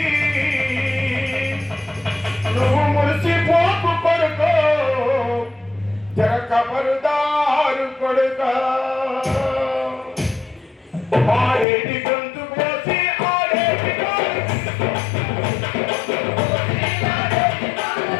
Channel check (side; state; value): right; drops out; at 11.7 s